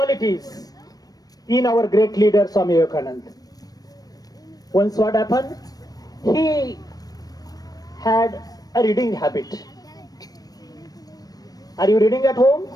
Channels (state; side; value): late; right; 0.18 ms